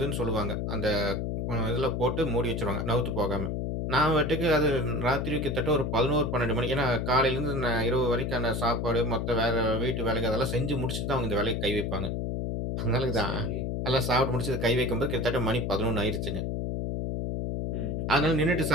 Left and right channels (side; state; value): left; noise; hum, 1 dB below the sound